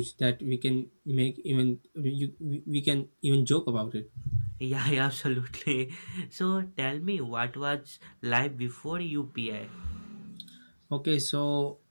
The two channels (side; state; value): both; inverted; correlation -1.00